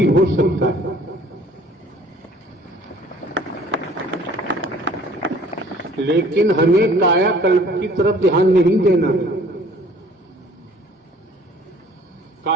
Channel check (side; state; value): both; normal; correlation 0.53